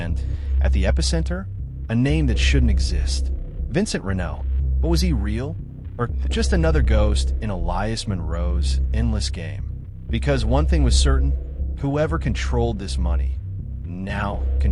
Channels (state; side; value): identical; both; correlation 1.00